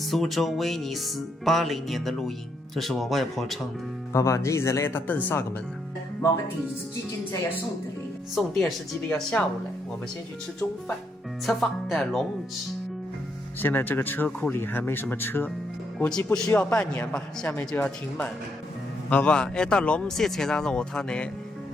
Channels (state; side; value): normal; both; correlation 0.77